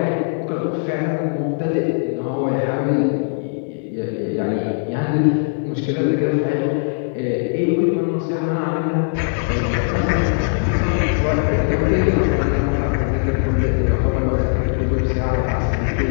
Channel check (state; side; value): silent; right; digital silence